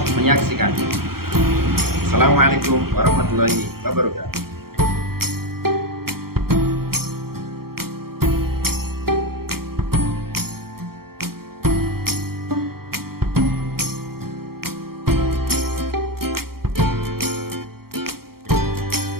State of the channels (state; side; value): late; left; 0.94 ms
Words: menyaksikan. Assalamualaikum warahmatullahi wabarakatuh.